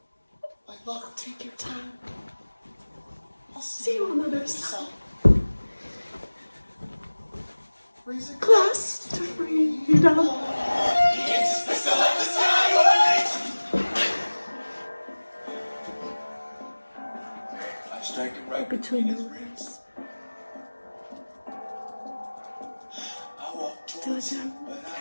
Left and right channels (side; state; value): both; inverted; correlation -1.00